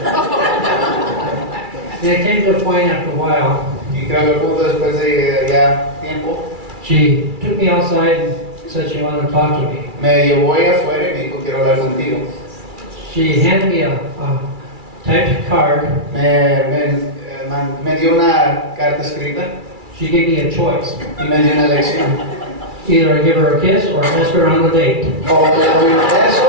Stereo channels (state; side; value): late; left; 2.3 ms